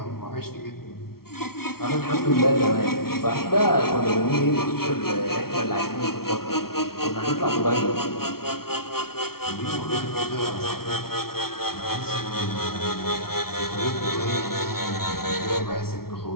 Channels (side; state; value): right; late; 0.94 ms